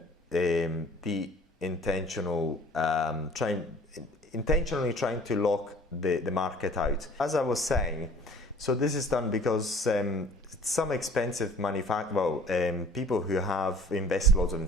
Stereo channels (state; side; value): normal; both; correlation 0.50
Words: the intentional intentionally trying to lock the market out. As I was saying, so this is done because some expensive people who have invested loads in